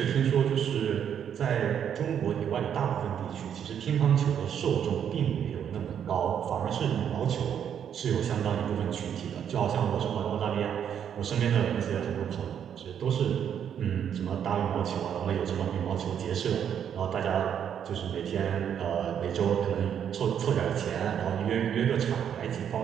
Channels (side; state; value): left; quieter; 8.7 dB